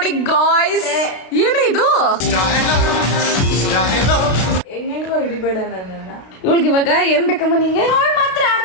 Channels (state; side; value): late; right; 32 ms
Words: ಗಾಯ್ಸ್. ಏನೇ ಇದು? ಹೆಂಗೆಂಗೋ ಹಿಡಿಬೇಡ ನನ್ನನ್ನ. ಇವಳಿಗೆ ಇವಾಗ ಏನ್ ಬೇಕಮ್ಮ ನಿಂಗೆ? ಅವಳು ಮಾತ್ರ